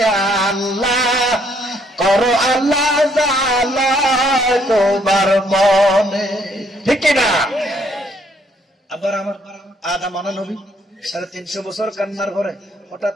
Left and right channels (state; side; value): normal; both; correlation 0.68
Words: আল্লাহ করো আল্লাহ জানা তোমার মনে ঠিক না আবার আমার আদম আনা নবী 350 বছর কান্নার ঘরে হঠাৎ